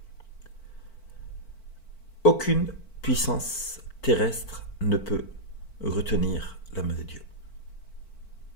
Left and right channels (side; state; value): right; late; 4.5 ms